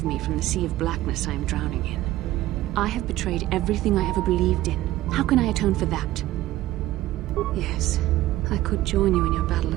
me from the sea of blackness I am drowning in. I have betrayed everything I ever believed in. How can I atone for that? Yes, I could join you in your battle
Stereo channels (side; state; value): left; quieter; 15.6 dB